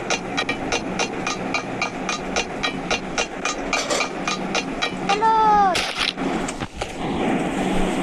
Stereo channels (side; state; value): both; identical; correlation 1.00